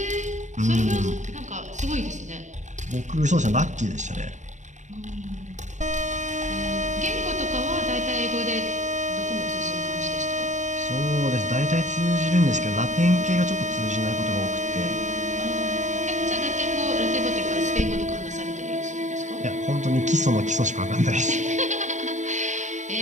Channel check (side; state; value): left; late; 0.35 ms